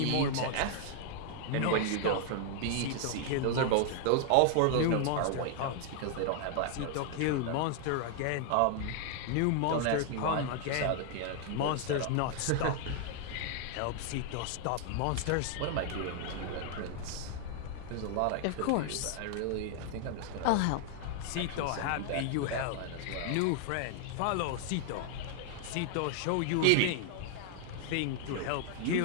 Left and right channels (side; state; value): both; different; correlation 0.00